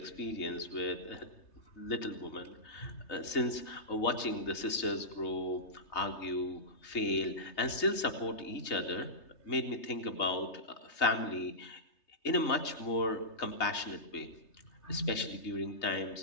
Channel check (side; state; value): right; late; 3.3 ms